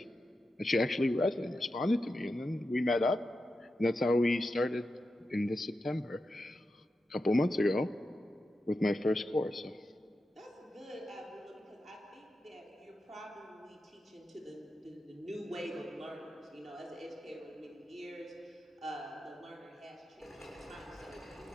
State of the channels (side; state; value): both; normal; correlation 0.90